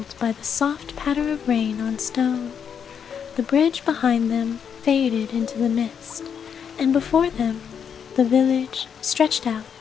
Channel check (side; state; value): right; quieter; 7.5 dB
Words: by the soft patter of rain on stone. The bridge behind them faded into the mist, and before them the village stretched out,